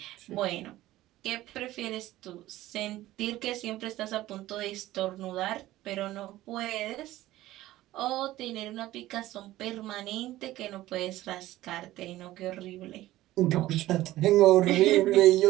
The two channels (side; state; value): left; quieter; 15.8 dB